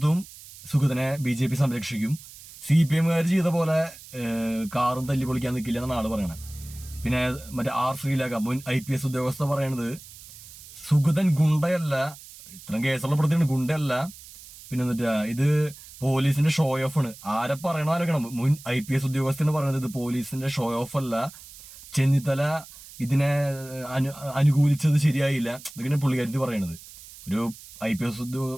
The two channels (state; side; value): noise; right; hiss, 18 dB below the sound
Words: സുഗതനെ BJP സംരക്ഷിക്കും, CPM-കാർ ചെയ്ത പോലെ കാറും തല്ലി പൊളിക്കാൻ നിൽക്കില്ല എന്നാണ് ആള് പറയണത്. പിന്നെ മറ്റേ ശ്രീലേഖ മുൻ IPS ഉദ്യോഗസ്ഥ പറയണത് സുഗതൻ ഗുണ്ടയല്ല, ഇത്രയും കേസുള്ള പ്രതിയാണ്, ഗുണ്ടയല്ല. പിന്നെ എന്നിട്ട് ഇത് പോലീസിന്റെ ഷോ ഓഫ് ആണ്. ആരെ പറയണം, മുൻ IPS ഉദ്യോഗസ്ഥന് പറയുന്നത് ഇത് പോലീസിന്റെ ഷോ ഓഫ് അല്ല, ചെന്നിത്തല ഇതിനെ അനുകൂലിച്ചത് ശരിയായില്ല, ഇതൊക്കെ പുള്ളിക്കാരി പറയണത്. ഒരു IPS